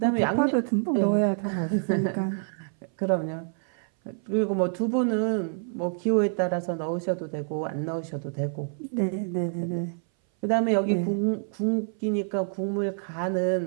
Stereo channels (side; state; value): left; silent; 58 dB below the other